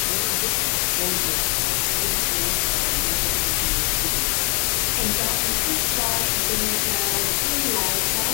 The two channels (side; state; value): right; quieter; 37.0 dB